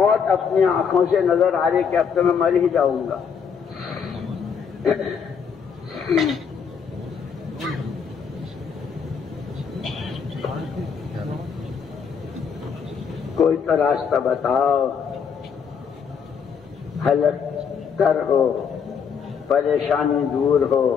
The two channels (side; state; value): right; quieter; 6.6 dB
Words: اپنی آنکھوں سے نظر آ رہی کہ اب تو میں مر ہی جاؤں گا. کوئی تو راستہ بتاؤ، حلق تر ہو، پریشانی دور ہو.